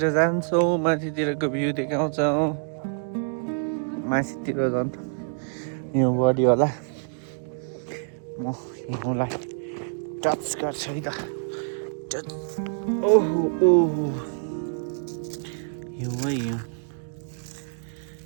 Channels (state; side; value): silent; left; digital silence